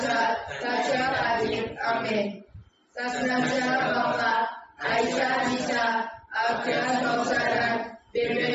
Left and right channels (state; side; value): identical; both; correlation 1.00